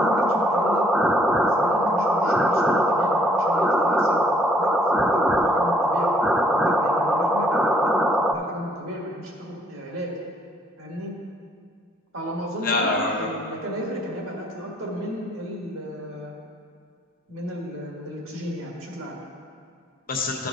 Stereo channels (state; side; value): normal; both; correlation 0.64